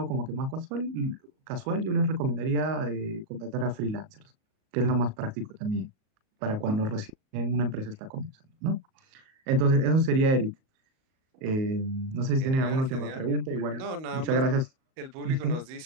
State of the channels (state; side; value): late; left; 38 ms